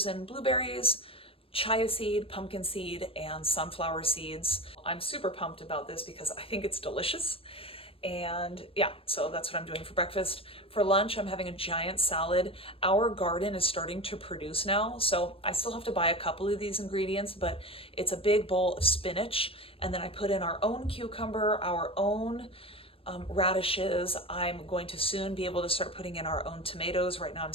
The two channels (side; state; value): right; late; 0.27 ms